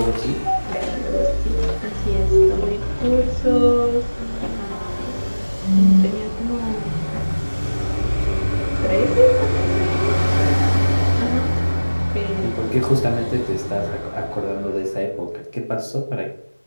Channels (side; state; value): both; inverted; correlation -1.00